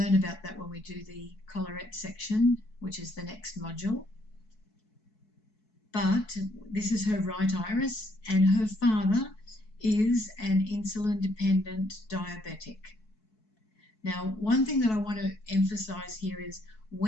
about that when we do the collarette section, which is the next module. But this is her right iris, and her father is an insulin-dependent diabetic. Now, one thing that I want to emphasize here is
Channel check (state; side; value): late; right; 4.6 ms